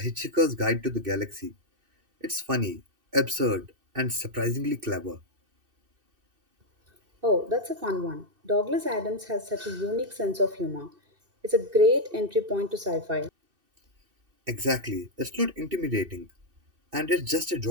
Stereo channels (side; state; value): left; late; 2.6 ms